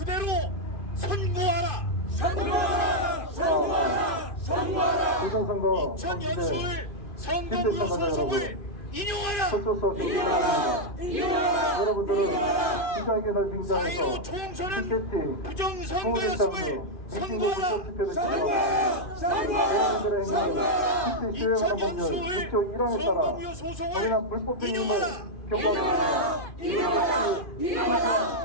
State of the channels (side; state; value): right; late; 2.4 ms